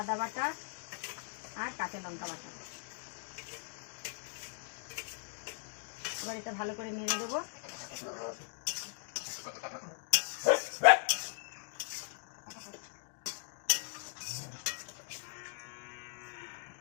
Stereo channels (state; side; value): silent; right; digital silence